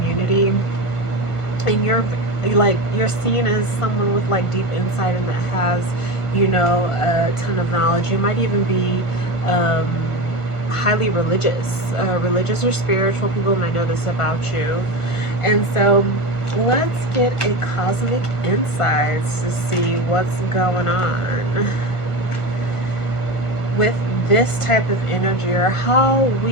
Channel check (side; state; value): right; late; 1.5 ms